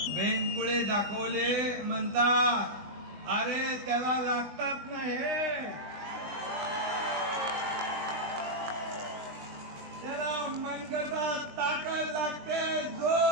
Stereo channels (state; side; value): late; left; 20 ms